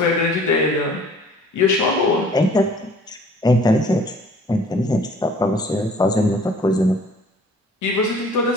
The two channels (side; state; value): both; normal; correlation 0.53